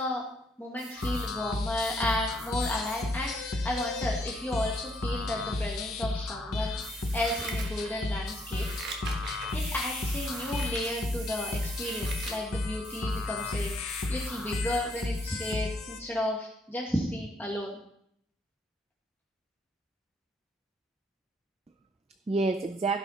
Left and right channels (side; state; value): both; normal; correlation 0.70